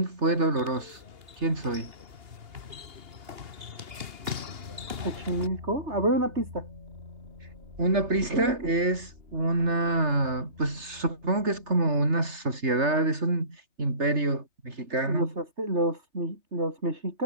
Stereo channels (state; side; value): late; left; 2.8 ms